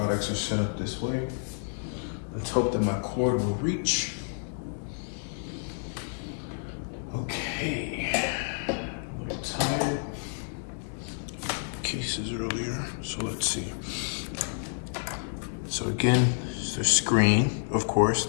are set up this way. Let's hope that my cord will reach. Okay. I'm a little tired. Cases earlier, so let's see. So again, it's the screen, of course,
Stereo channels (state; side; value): silent; right; digital silence